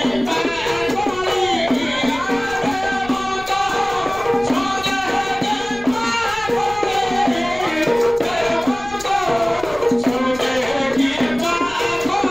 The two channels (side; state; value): left; noise; rumble, 17 dB below the sound